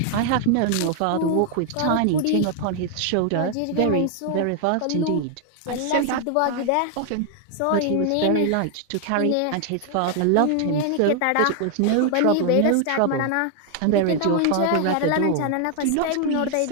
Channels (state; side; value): different; both; correlation 0.00